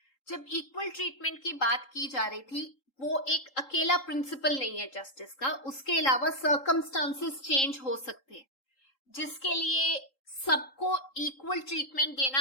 जब इक्वल ट्रीटमेंट की बात की जा रही थी, वो एक अकेला प्रिंसिपल नहीं है जस्टिस का, उसके अलावा सर्कमस्टांसेस चेंज हो सकते हैं जिसके लिए सबको इक्वल ट्रीटमेंट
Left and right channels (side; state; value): right; late; 3.8 ms